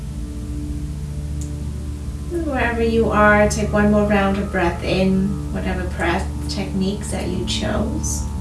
And wherever you are, take one more round of breath in, whatever breath techniques that you chose.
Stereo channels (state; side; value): identical; both; correlation 1.00